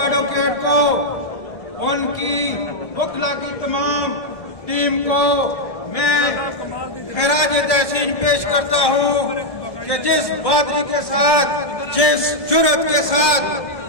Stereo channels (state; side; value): late; right; 1.6 ms